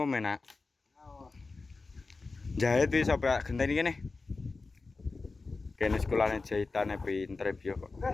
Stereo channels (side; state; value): right; quieter; 3.9 dB